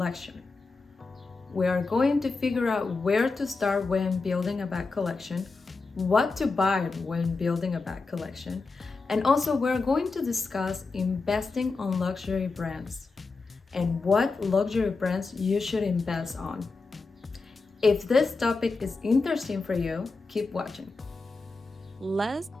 We are going to figure out where to start when building a bag collection, what to buy when building a bag collection, and also we're going to discuss investing on luxury brands and what luxury brands you should invest on. If this topic is interesting for you, keep watching. Let's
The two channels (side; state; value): right; quieter; 4.0 dB